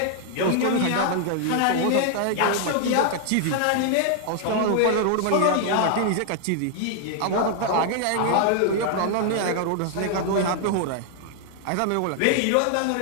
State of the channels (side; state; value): both; different; correlation 0.00